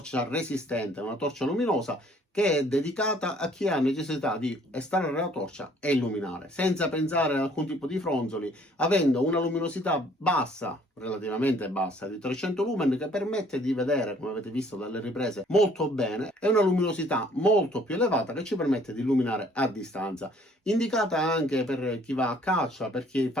resistente, una torcia luminosa che è dedicata a chi ha necessità di estrarre la torcia e illuminare, senza pensare ad alcun tipo di fronzoli, avendo una luminosità bassa, relativamente bassa, di 300 lumen, che permette di vedere, come avete visto dalle riprese, molto bene, e una luminosità molto più elevata che ci permette di illuminare a distanza. Indicata anche per chi va a caccia, per chi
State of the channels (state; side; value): normal; both; correlation 0.59